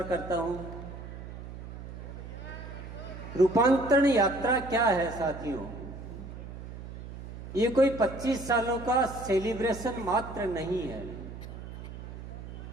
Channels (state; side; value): noise; right; hum, 11 dB below the sound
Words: करता हूँ। रूपांतरण यात्रा क्या है साथियों? ये कोई 25 सालों का सेलिब्रेशन मात्र नहीं है।